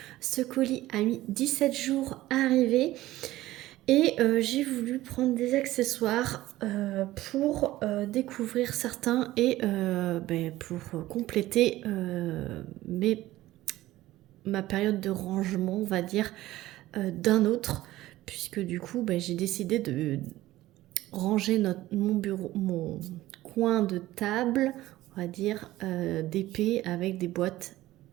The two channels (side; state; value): left; quieter; 16.2 dB